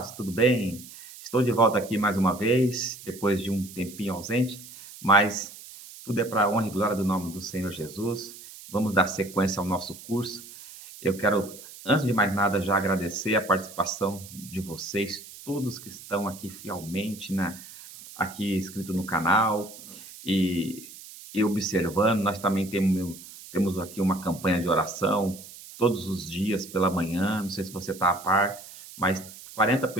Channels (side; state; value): right; noise; hiss, 16 dB below the sound